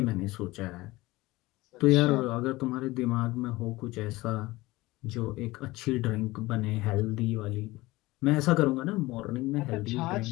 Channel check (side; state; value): right; quieter; 19.9 dB